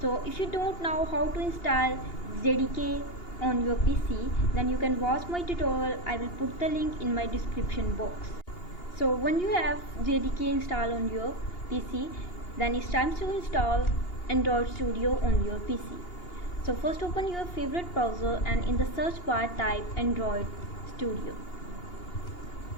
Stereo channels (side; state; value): right; late; 2.8 ms